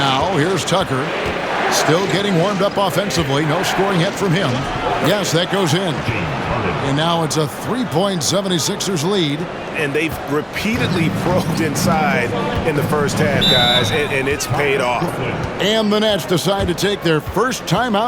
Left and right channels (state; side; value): identical; both; correlation 1.00